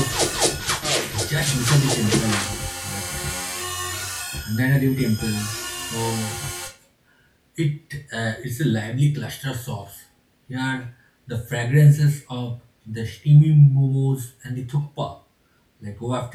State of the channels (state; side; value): identical; both; correlation 1.00